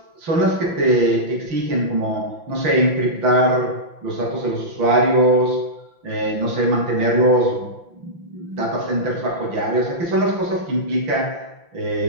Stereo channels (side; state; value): left; late; 5.9 ms